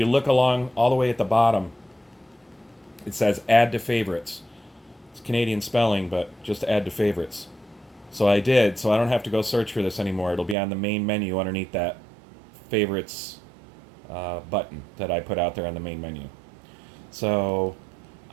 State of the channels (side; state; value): left; drops out; at 10.6 s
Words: look along all the way at the bottom, it says add to favorites. It's Canadian spelling, but just add to favorites. So I did, so I don't have to go search for this anymore. It'll be on the main menu underneath that favorites button that I put out there on the main menu. So